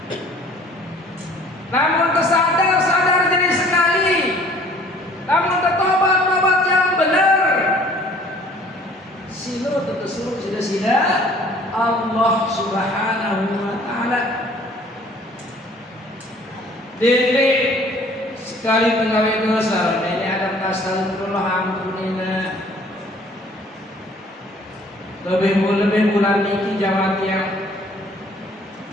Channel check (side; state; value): both; normal; correlation 0.55